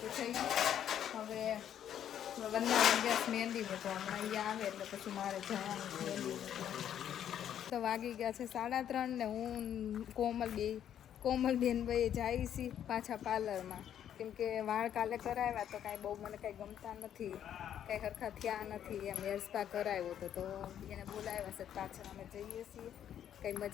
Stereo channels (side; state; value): right; quieter; 10.0 dB